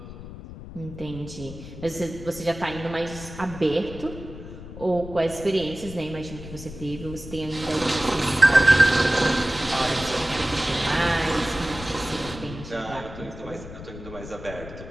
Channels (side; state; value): left; noise; rumble, 13 dB below the sound